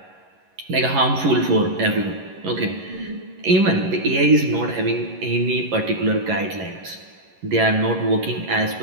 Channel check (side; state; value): left; late; 11 ms